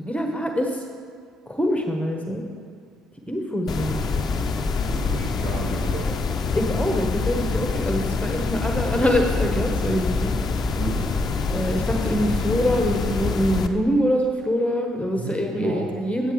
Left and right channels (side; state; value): both; normal; correlation 0.79